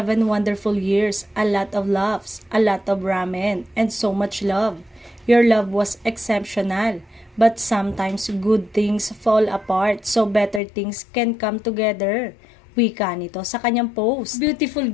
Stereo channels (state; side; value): drops out; right; at 10.6 s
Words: wonderful years, a lot of laughs, a lot of ramen, and so much love. Your love was exceptional, but sometimes good things fall apart so better things can come together. Wika nito sa kanyang post. Beautiful